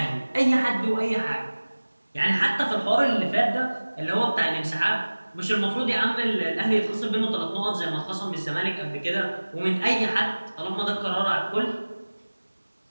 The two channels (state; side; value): inverted; both; correlation -1.00